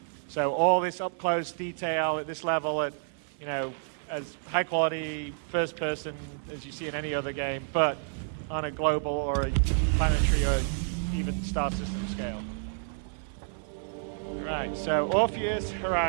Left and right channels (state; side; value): silent; left; 58 dB below the other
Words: So all this up-close detail at this level, at as high-quality first-person as you see in any other game, but on a global or a planetary or even star system scale. All right, so Orpheus,